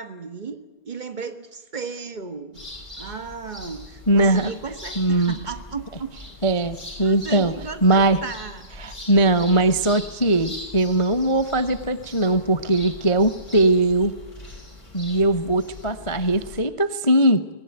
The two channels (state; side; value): late; right; 1.4 ms